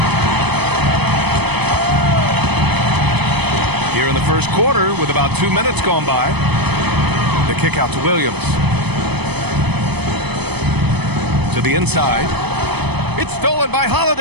Here in the first quarter, with about 2 minutes gone by, the kick out to Williams. To the inside. It's stolen by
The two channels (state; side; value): late; left; 0.98 ms